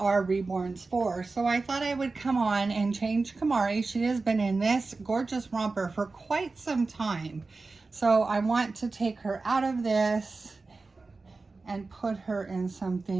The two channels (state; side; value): quieter; left; 3.8 dB